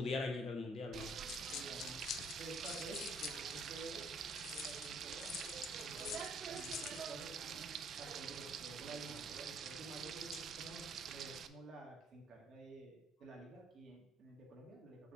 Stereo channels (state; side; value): normal; both; correlation 0.63